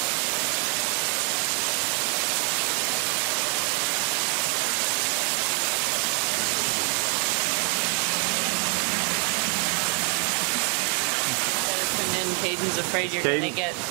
And then Caden's afraid you're Caden- gonna get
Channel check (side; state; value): left; quieter; 39.5 dB